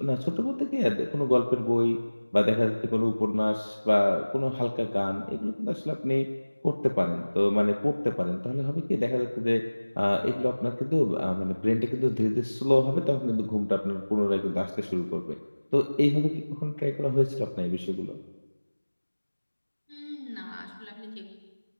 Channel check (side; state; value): both; inverted; correlation -1.00